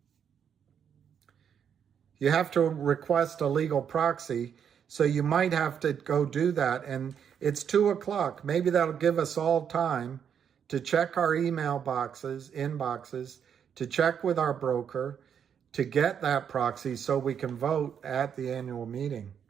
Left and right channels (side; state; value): left; quieter; 8.0 dB